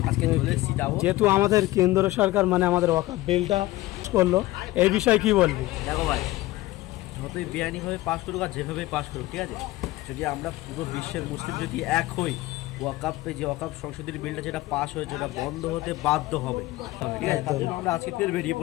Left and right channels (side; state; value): right; quieter; 18.0 dB